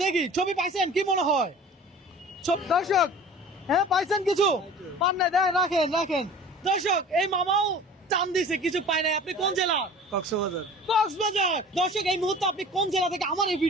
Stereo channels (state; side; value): normal; both; correlation 0.42